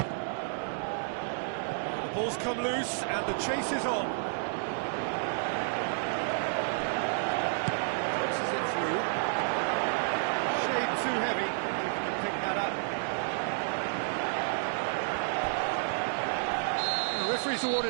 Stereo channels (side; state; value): left; silent; 57 dB below the other